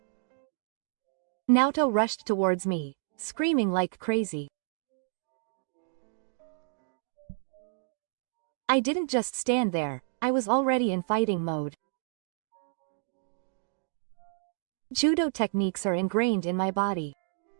Naoto rushed towards me, screaming like crazy. I didn't just stand there, I was already in fighting mode. Judo techniques are ingrained in my body.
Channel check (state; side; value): silent; left; digital silence